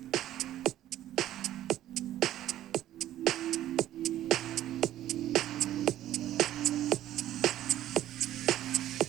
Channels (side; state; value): left; quieter; 12.9 dB